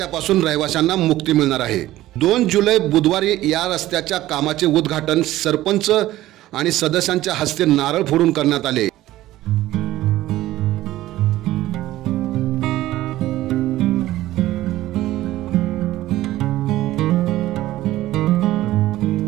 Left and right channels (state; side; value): quieter; left; 15.4 dB